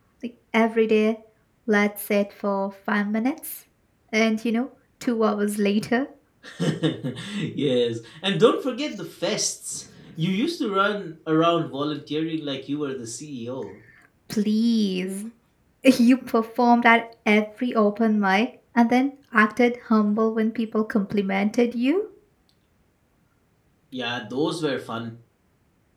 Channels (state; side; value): identical; both; correlation 1.00